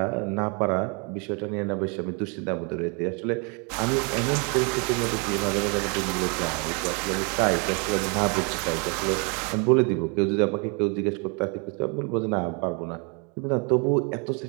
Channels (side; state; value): left; quieter; 34.1 dB